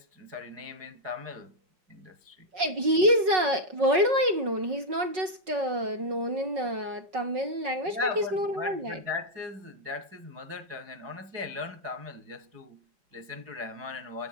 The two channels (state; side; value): late; left; 5.4 ms